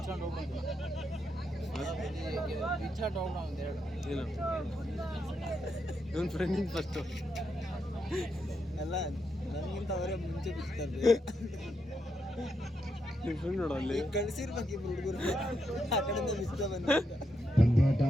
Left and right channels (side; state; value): both; normal; correlation 0.82